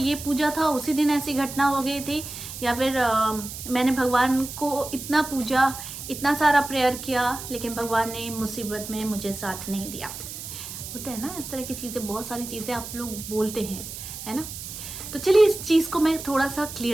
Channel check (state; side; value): noise; right; hiss, 10 dB below the sound